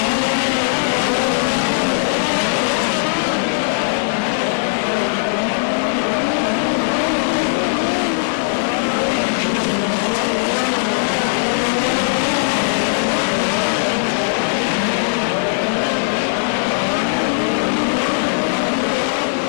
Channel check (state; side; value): silent; right; digital silence